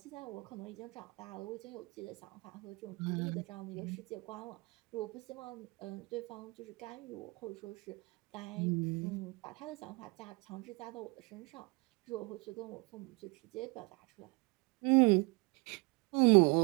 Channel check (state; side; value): quieter; left; 26.9 dB